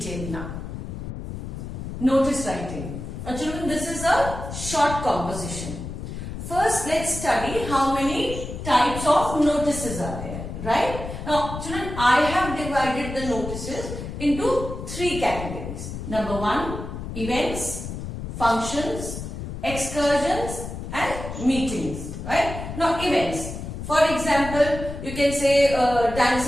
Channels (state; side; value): noise; left; rumble, 8 dB below the sound